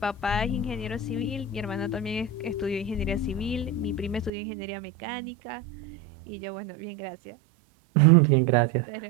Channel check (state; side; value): drops out; left; at 4.3 s